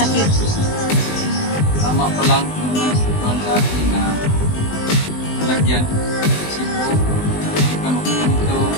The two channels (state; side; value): late; right; 20 ms